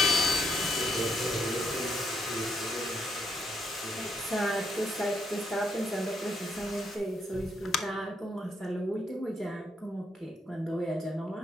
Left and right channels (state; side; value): normal; both; correlation 0.75